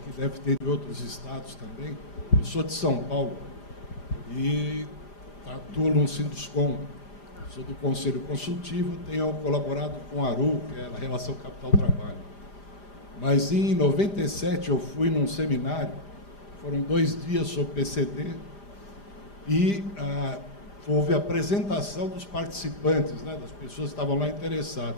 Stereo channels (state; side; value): late; right; 5.0 ms